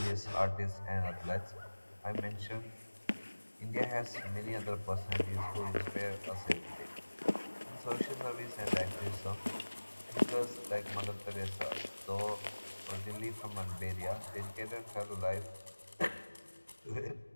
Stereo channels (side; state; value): both; inverted; correlation -1.00